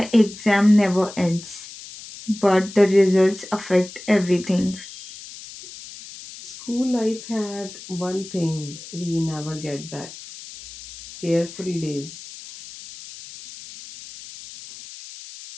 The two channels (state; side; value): noise; left; hiss, 15 dB below the sound